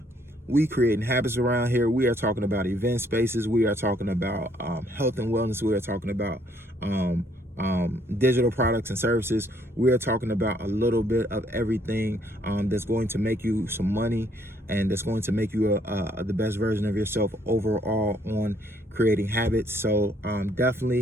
We creating habits around here. We are talking about event spaces. We are talking about health and wellness. We are talking about digital products and services. We are talking about a little bit of everything that's going to make you some money, and that's going to make you the best version of yourself overall on creating habits. So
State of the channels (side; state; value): both; normal; correlation 0.66